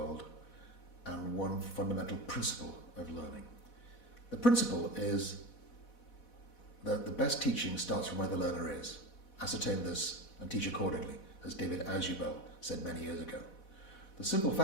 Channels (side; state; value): right; late; 4.1 ms